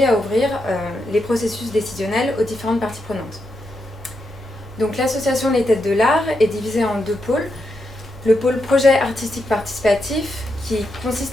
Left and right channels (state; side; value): normal; both; correlation 0.84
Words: à ouvrir les processus décisionnels aux différentes parties prenantes. Donc l'association Les Têtes de l'Art est divisée en deux pôles. Le pôle projet artistique participatif, qui